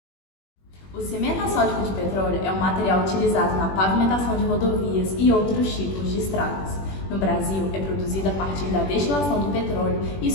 O cimento asfáltico de petróleo é um material utilizado na pavimentação de rodovias e outros tipos de estradas. No Brasil, é produzido a partir da destilação do petróleo e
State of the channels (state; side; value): late; right; 21 ms